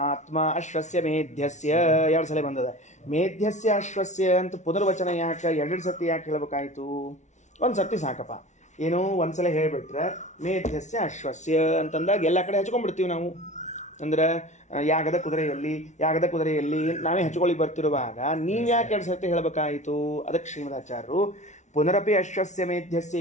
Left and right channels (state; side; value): late; right; 0.34 ms